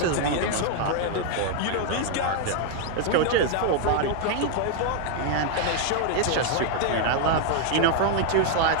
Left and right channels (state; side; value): different; both; correlation 0.00